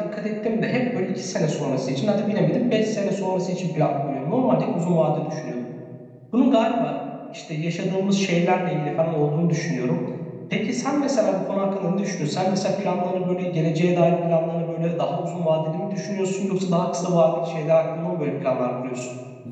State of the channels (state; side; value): identical; both; correlation 1.00